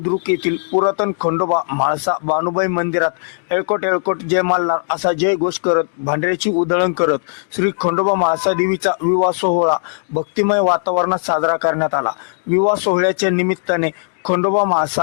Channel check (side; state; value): right; silent; digital silence